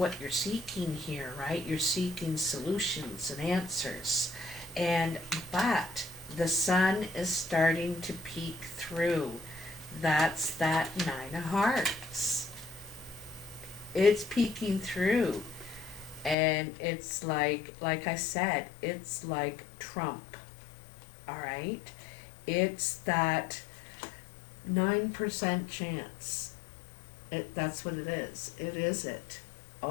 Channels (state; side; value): drops out; right; at 16.4 s